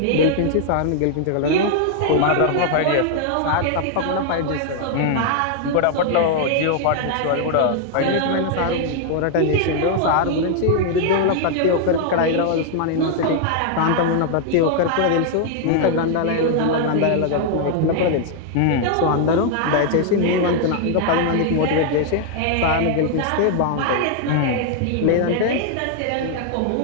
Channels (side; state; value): both; different; correlation 0.00